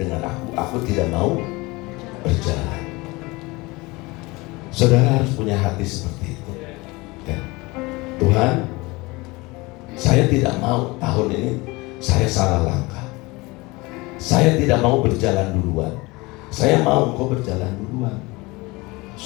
aku tidak mau berjalan. Saudara harus punya hati seperti itu. Ya. Tuhan, saya tidak mau tahun ini saya salah langkah. Saya tidak mau berjalan duluan. Saya mau Engkau berjalan duluan.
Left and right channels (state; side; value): quieter; right; 23.4 dB